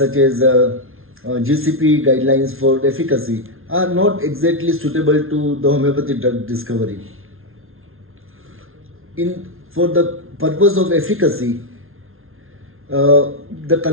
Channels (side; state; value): left; late; 0.61 ms